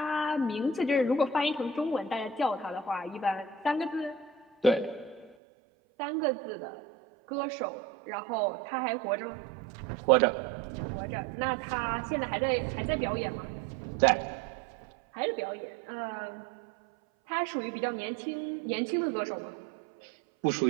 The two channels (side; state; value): left; drops out; at 5.4 s